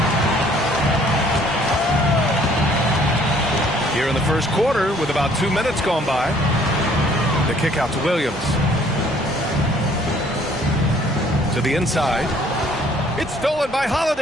Here in the first quarter, with about 2 minutes gone by, the kick out to Williams. To the inside. It's stolen by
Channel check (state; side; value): normal; both; correlation 0.59